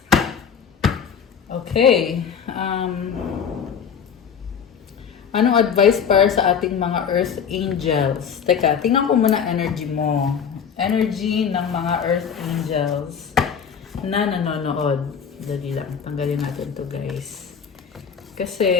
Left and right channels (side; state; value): right; quieter; 7.2 dB